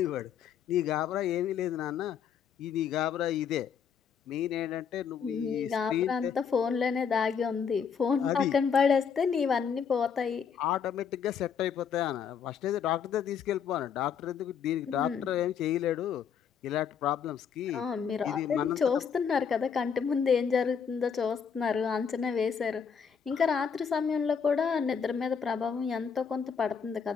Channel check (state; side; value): quieter; right; 7.0 dB